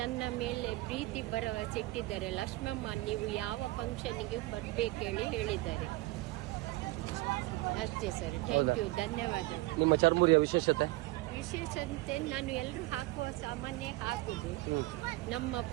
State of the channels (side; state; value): left; quieter; 20.0 dB